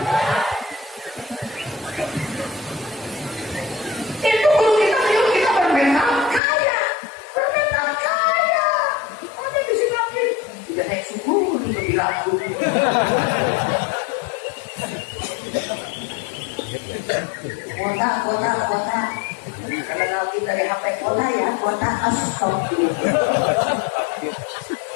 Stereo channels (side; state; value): right; drops out; at 6.4 s